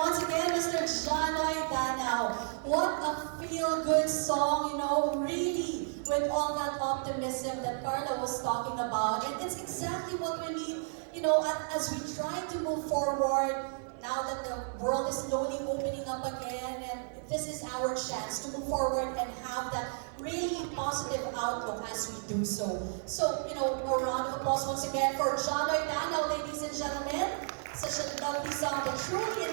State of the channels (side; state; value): left; silent; digital silence